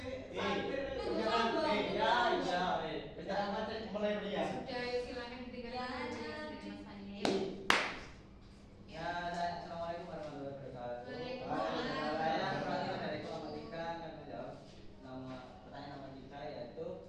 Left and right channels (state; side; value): identical; both; correlation 1.00